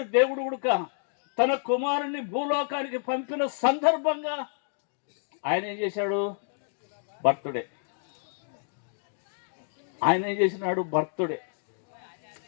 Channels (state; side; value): silent; right; digital silence